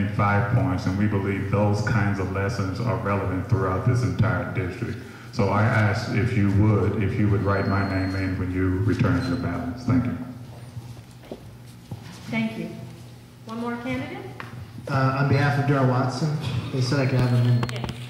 5 points, and we believe those kinds of lessons are relevant throughout this entire district. So I ask if you would write my name in when you return your ballots. Thank you. Thank you. One more candidate? On behalf of Darrell Watson, they said I could have him in. Yes.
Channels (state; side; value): identical; both; correlation 1.00